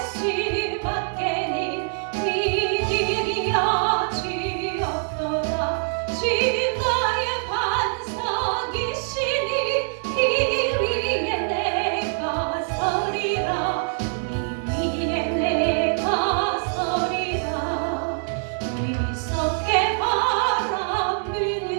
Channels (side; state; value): left; silent; 63 dB below the other